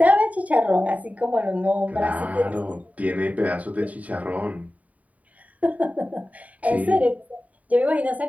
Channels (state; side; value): late; left; 0.070 ms